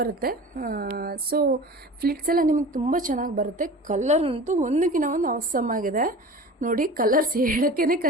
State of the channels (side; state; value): both; normal; correlation 0.37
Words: ಸೊ ಫ್ಲಿಟ್ಸ್ ಎಲ್ಲ ನಿಮಗೆ ತುಂಬ ಚೆನ್ನಾಗಿ ಬರುತ್ತೆ. ಕಲರ್ ಅಂತೂ ಒಂದಕ್ಕಿಂತ ಒಂದು ಅವಸಮ್ ಆಗಿದೆ. ನೋಡಿ, ಕಲರ್ಸ್ ಹೇಳೋಕ್ಕೇ